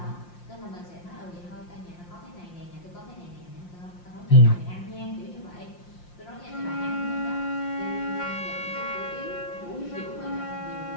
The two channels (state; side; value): late; right; 5.7 ms